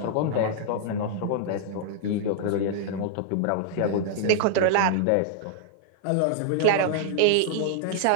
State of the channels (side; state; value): both; different; correlation -0.01